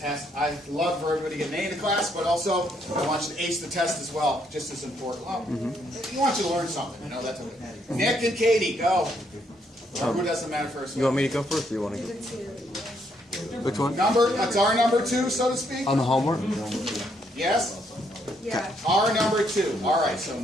I love for everybody to get an A in the class, but also I want you to ace the test as well, just as important. Well, you want you to learn something, you know, that's okay. Nick and Katie, go. Or who doesn't matter first? You want me to go first, or you want to go? Which one? That's our number 2, so to speak? On the homework? Yes? Yeah. Our number 2. All right, so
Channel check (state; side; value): normal; both; correlation 0.73